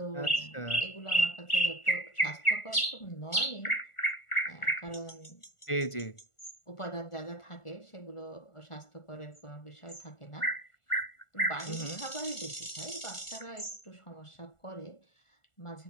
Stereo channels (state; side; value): late; right; 1.4 ms